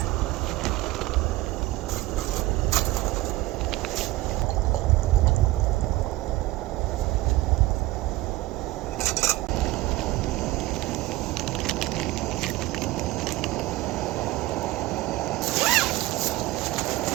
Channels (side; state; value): left; quieter; 18.1 dB